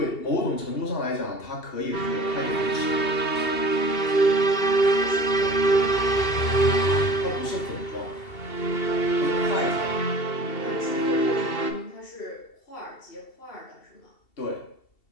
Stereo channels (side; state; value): right; late; 2.7 ms